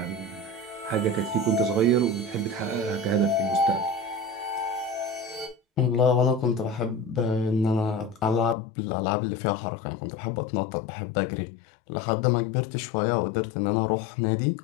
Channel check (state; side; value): drops out; right; at 8.6 s